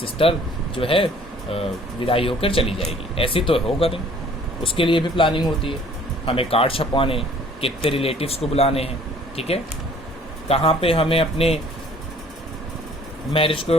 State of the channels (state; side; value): normal; both; correlation 0.55